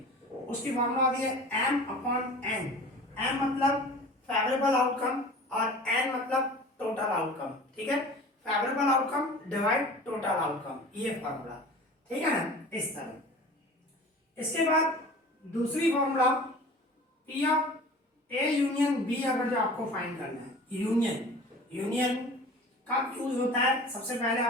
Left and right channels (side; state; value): both; normal; correlation 0.41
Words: उसकी फार्मूला आती है m/n। m मतलब फेवरेबल आउटकम और n मतलब टोटल आउटकम। ठीक है, favourable outcome divide total outcome, ये फॉर्मूला। ठीक है ना, इस तरह। इसके बाद दूसरी formula P of A union B, अगर जो आपको फाइंड करना है, यूनियन कब यूज होता है, सबसे पहले